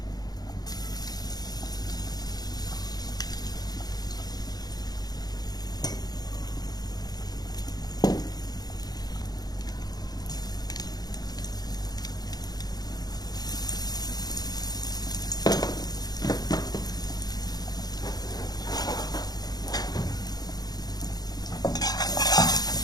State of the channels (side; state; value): right; late; 0.19 ms